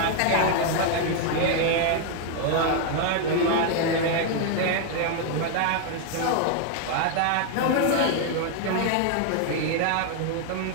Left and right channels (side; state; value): both; different; correlation 0.00